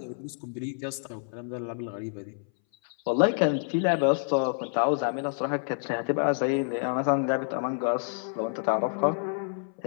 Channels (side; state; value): right; silent; 59 dB below the other